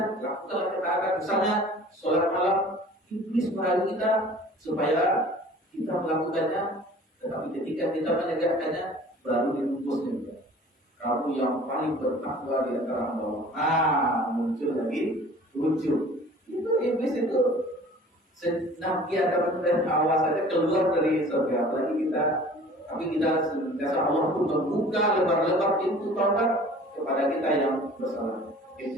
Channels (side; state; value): both; normal; correlation 0.47